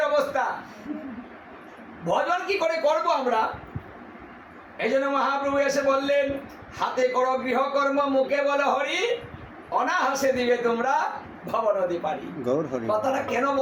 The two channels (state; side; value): identical; both; correlation 1.00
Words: অবস্থা, ভজন কি করে করব আমরা? এই জন্য মহাপ্রভু এসে বললেন, হাতে করো গৃহকর্ম, মুখে বলো হরি, অনাহাসে দিবে তোমরা ভবনদী পারি। কথাটা কেন